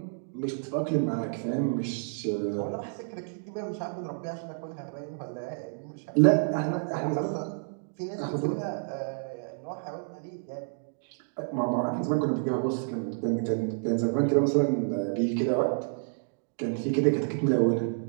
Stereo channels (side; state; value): left; silent; digital silence